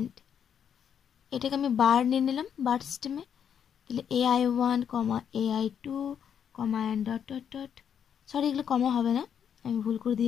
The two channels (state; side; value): quieter; right; 8.2 dB